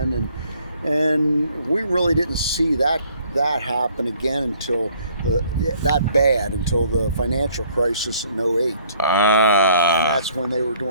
and we really didn't see that happen again until until the financial crisis in 08. And that's when they were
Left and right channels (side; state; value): both; inverted; correlation -0.60